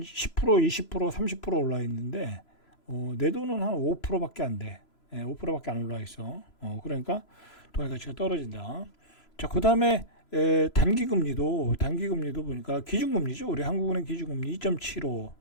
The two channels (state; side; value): late; right; 3.0 ms